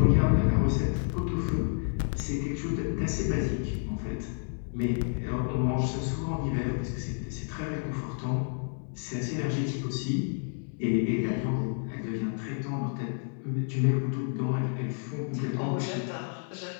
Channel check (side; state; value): right; silent; 58 dB below the other